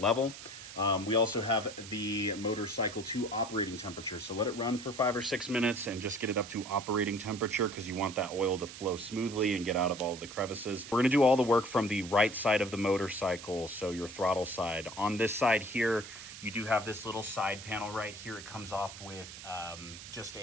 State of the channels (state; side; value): noise; right; hiss, 13 dB below the sound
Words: level. We also have the motorcycle to operating temperature. So let it run for 5 or 6 minutes and just get it up to operating temperature because you want that oil to flow smoothly and get out of all the crevices. We're gonna do all the work from the right side of the motorcycle, so your throttle side. On this side here, you do have this little side panel right here. It comes off with just